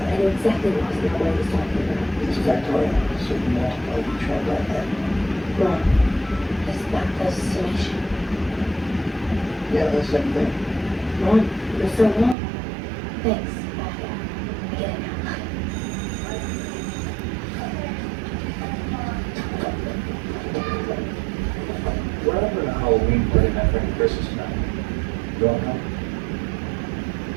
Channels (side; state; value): left; drops out; at 12.4 s